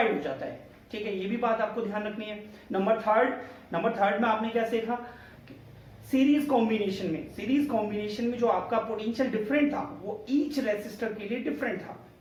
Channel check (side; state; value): both; identical; correlation 1.00